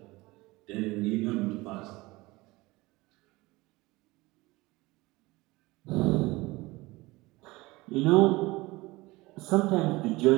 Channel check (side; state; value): left; quieter; 21.3 dB